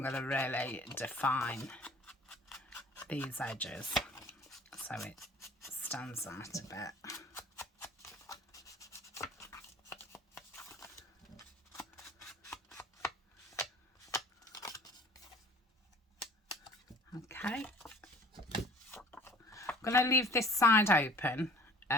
going to really define these edges so it stands out a bit. Okay, I'm going to leave this side open.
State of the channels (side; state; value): both; normal; correlation 0.50